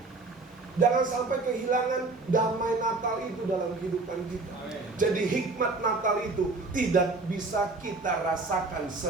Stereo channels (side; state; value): left; quieter; 3.5 dB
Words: Jangan sampai kehilangan damai Natal itu dalam kehidupan kita. Jadi hikmat Natal itu tidak bisa kita rasakan